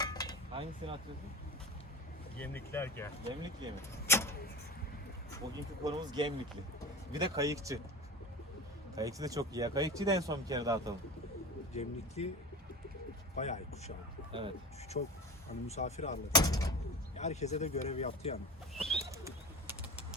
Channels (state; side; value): normal; both; correlation 0.30